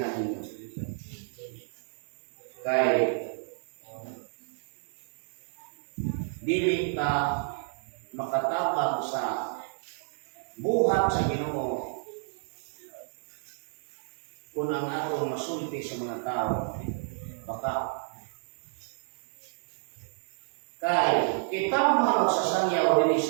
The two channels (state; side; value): silent; left; digital silence